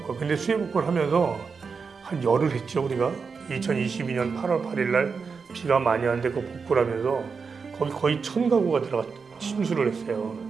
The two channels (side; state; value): left; quieter; 5.3 dB